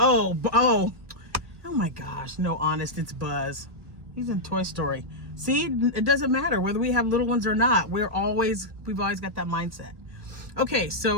my gosh! No, honest, it's Buzz. He's in Toy Story. See, it doesn't matter whether we have little ones or not. We've always got that mindset. Okay,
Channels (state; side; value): late; left; 1.6 ms